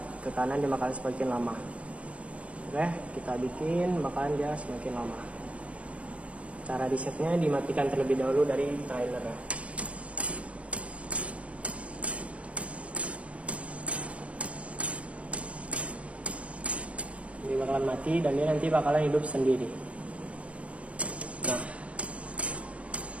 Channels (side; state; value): left; late; 0.063 ms